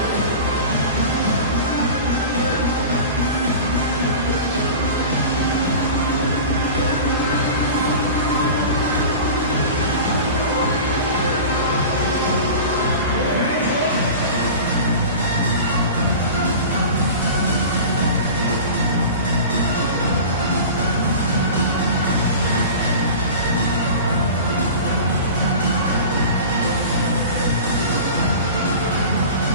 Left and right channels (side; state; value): both; inverted; correlation -0.35